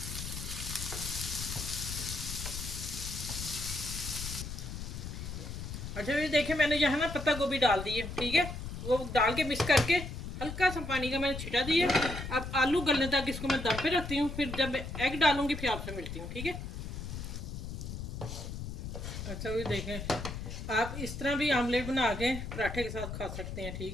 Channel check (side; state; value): left; noise; rumble, 7 dB below the sound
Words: अच्छा, ये देखें मैंने यहाँ ना पत्ता गोभी डाल दी है, ठीक है, वो डाल के मिक्स करके हल्का सा पानी का मैंने छिटा दिया। अब आलू गलने तक इसको मैं दम पे रखती हूँ, फिर जब एग डालूंगी फिर आपसे मिलती हूँ, ठीक है। अच्छा, ये देखें, आप इस तरह भी आमलेट बना के पराठे के साथ खा सकते हैं,